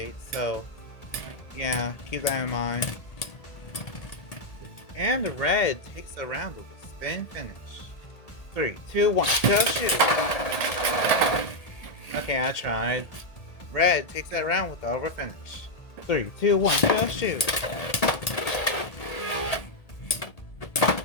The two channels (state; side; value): late; right; 1.8 ms